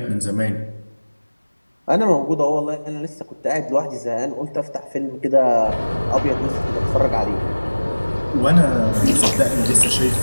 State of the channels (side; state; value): both; inverted; correlation -1.00